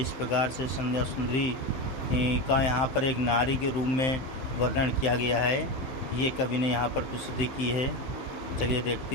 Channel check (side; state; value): right; late; 15 ms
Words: प्रकार से संध्या सुंदरी का यहाँ पर एक नारी के रूप में वर्णन किया गया है। ये कवि ने यहाँ पर प्रस्तुति की है। चलिए देखते